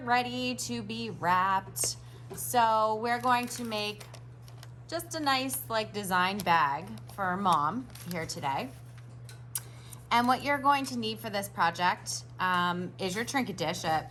to be wrapped. So we're going to make just a nice design bag for Mom here today. And what you're going to need for this project is your trinket dish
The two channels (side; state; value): both; identical; correlation 1.00